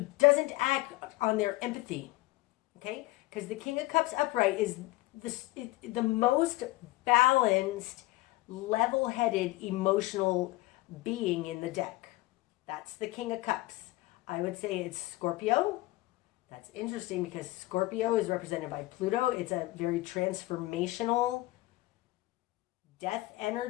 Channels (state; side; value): quieter; right; 19.6 dB